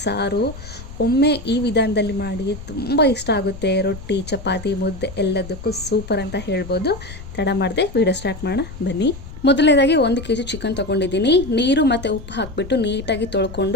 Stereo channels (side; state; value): left; noise; rumble, 13 dB below the sound